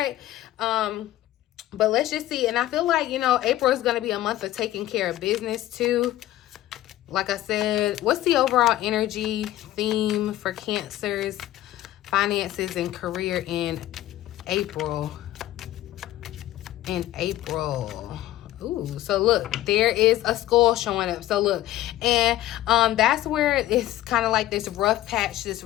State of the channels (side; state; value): right; quieter; 14.5 dB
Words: But let's just see. And I feel like, April is going to be a month of taking care of business too. Like I said, what's the overall energy theme for Cancer's finances and career in April? Ooh, so look, there is a skull showing up. So look, and that's where it's kind of like this rough patch, this